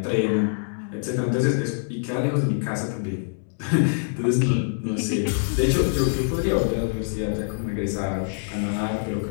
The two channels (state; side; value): silent; right; digital silence